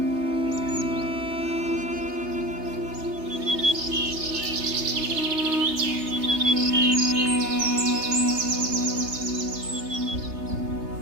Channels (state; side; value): late; left; 3.3 ms